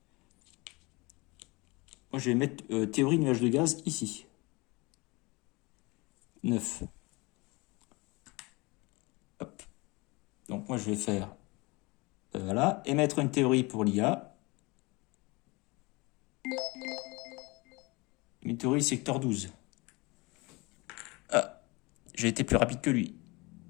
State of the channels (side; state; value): right; quieter; 25.2 dB